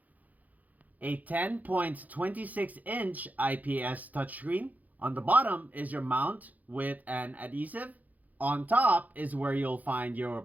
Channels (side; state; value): left; late; 0.080 ms